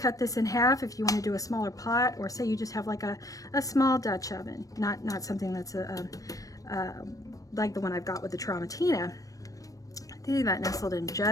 this in half if you want to do a smaller pot, or say you just have like a small Dutch oven, not something that's like the one I've got with the Tramontina. That nestled in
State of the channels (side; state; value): right; late; 0.16 ms